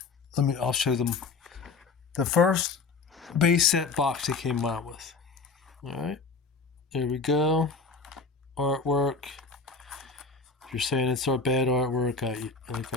I'll show them the first base set box they came out with. All right, there we go. Artwork. If you're saying it's our bad artwork,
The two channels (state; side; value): quieter; right; 4.5 dB